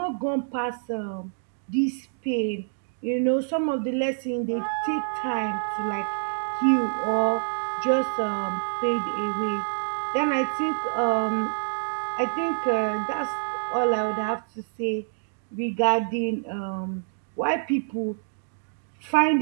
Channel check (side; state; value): left; silent; digital silence